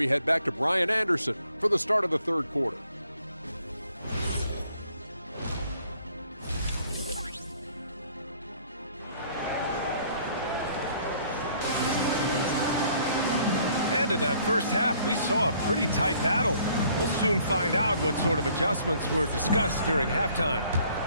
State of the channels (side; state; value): both; inverted; correlation -0.61